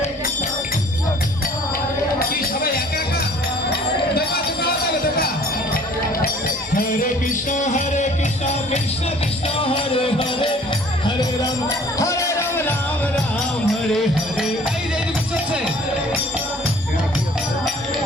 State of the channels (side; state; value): both; normal; correlation 0.53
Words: কি সবাই একা একা দেখা? হরে কৃষ্ণ কৃষ্ণ কৃষ্ণ হরে হরে, হরে রাম রাম রাম হরে হরে। এই যে এদিকে চলছে,